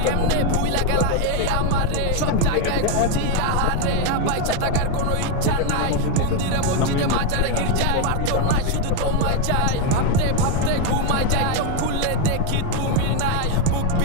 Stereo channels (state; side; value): different; both; correlation 0.01